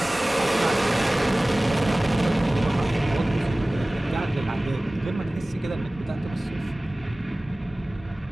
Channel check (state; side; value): normal; both; correlation 0.98